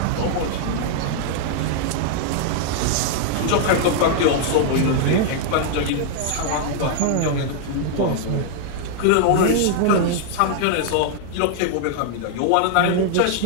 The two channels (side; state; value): both; different; correlation -0.01